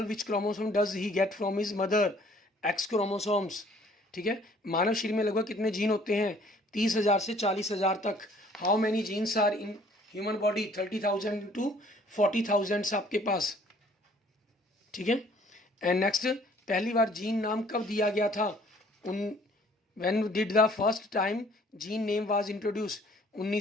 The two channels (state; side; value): normal; both; correlation 0.57